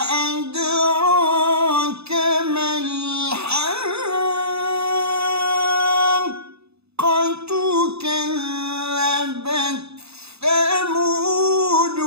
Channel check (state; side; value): late; left; 0.79 ms